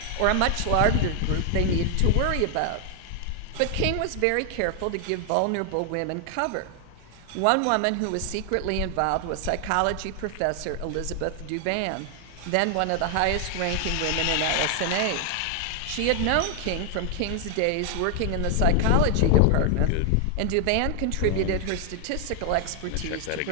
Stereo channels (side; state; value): both; different; correlation 0.00